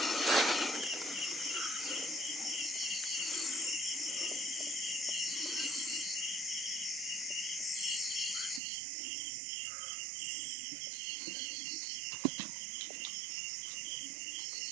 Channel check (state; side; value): drops out; left; at 8.6 s